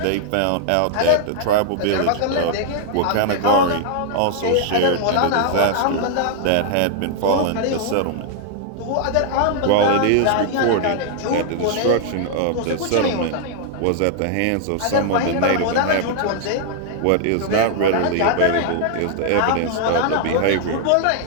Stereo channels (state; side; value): different; both; correlation 0.00